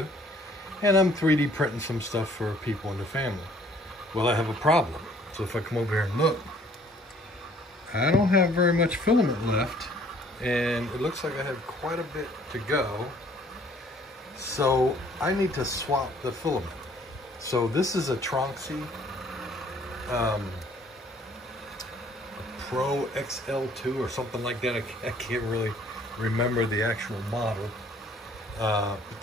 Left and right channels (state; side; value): normal; both; correlation 0.58